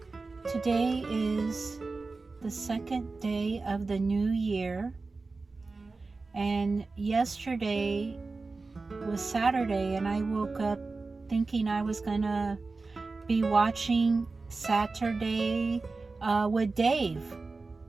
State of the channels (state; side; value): quieter; left; 3.8 dB